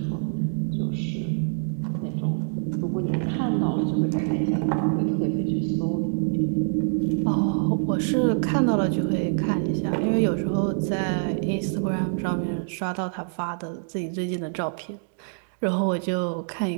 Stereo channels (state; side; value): silent; left; digital silence